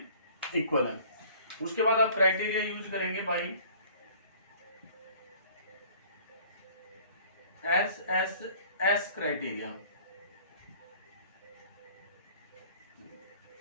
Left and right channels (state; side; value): inverted; both; correlation -0.52